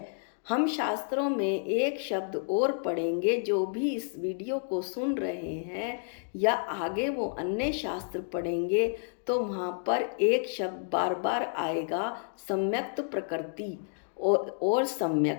हम शास्त्रों में एक शब्द और पढ़ेंगे। जो भी इस वीडियो को सुन रहे हैं या आगे वो अन्य शास्त्र पढ़ेंगे, तो वहाँ पर एक शब्द बार बार आएगा, सम्यक्त प्रकृति और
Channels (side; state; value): right; silent; digital silence